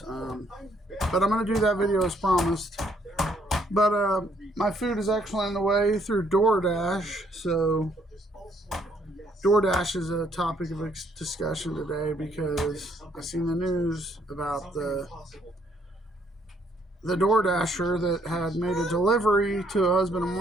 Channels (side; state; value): both; normal; correlation 0.68